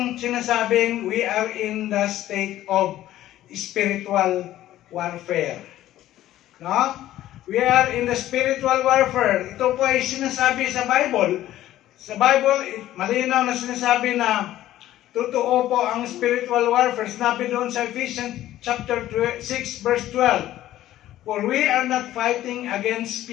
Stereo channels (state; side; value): quieter; right; 13.8 dB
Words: sinasabing we are in the state of spiritual warfare. No? We are in the spiritual warfare. Ito po ay sinasabi sa Bible. Sa Bible, malinaw na sinasabi na totoo po ang spiritual warfare. Sinabi doon sa Ephesians chapter 6 verse 12. For we are not fighting against